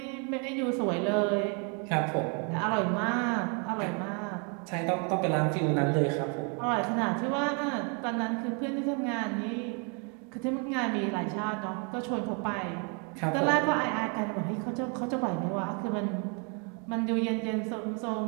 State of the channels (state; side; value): quieter; left; 36.4 dB